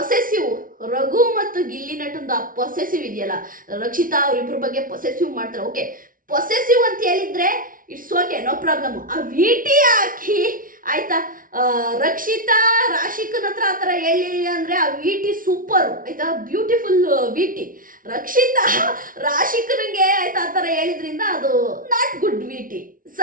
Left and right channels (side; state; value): left; late; 0.40 ms